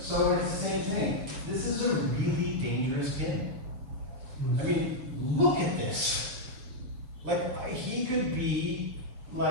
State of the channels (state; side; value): late; left; 7.1 ms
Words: So it's the same thing. This is a really dangerous pin. I mean, look at this. Like, he could be